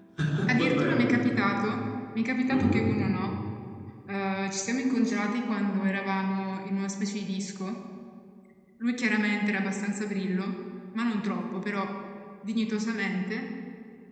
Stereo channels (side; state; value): both; identical; correlation 1.00